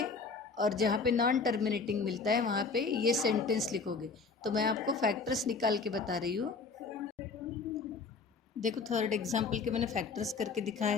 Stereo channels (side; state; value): right; quieter; 4.6 dB